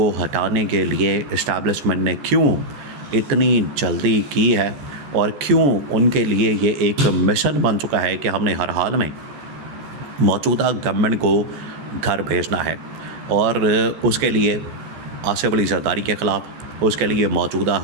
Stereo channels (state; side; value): late; left; 14 ms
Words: ہٹانے کے لیے اسٹیبلشمنٹ نے کیوں اتنی جلدی کی ہے، اور کیوں ان کے لیے یہ ایک مشن بن چکا ہے کہ ہم نے ہر حال میں موجودہ گورنمنٹ کو گھر بھیجنا ہے، اور اس کے لیے آصف علی زرداری کے خلاف، اس کے لیے موجودہ